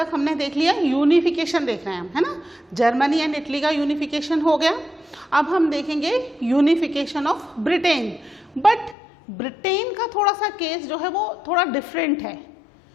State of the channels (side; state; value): right; drops out; at 9.0 s